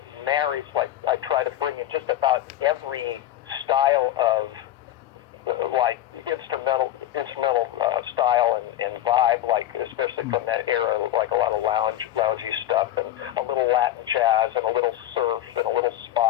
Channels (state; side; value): quieter; right; 12.8 dB